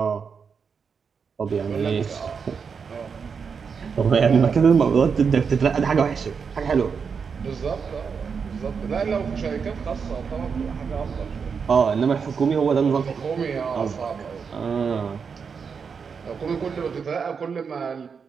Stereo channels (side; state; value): left; quieter; 6.0 dB